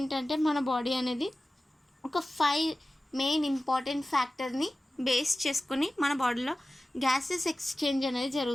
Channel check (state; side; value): normal; both; correlation 0.96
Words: మన బాడీ అనేది ఒక 5 మెయిన్ ఇంపార్టెంట్ ఫ్యాక్టర్ని బేస్ చేసుకుని మన బాడీలో గ్యాసెస్ ఎక్స్చేంజ్ అనేది